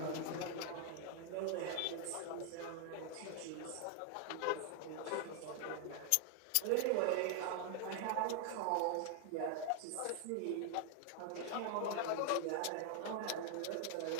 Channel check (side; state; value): both; different; correlation 0.00